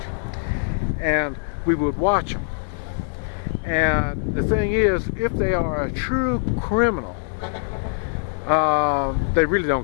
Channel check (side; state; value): right; silent; digital silence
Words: And we would watch them. And the thing is, if they are a true criminal, they really